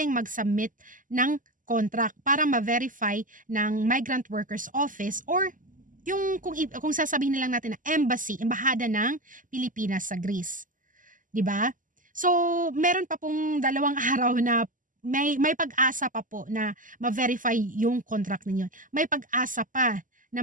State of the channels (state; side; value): late; left; 0.38 ms